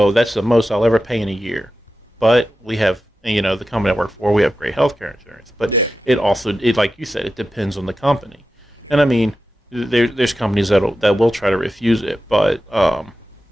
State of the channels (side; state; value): both; normal; correlation 0.92